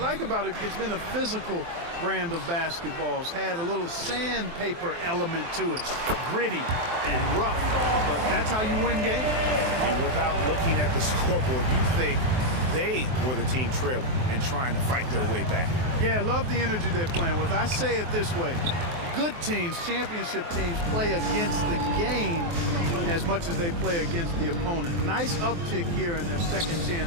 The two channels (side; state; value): left; late; 23 ms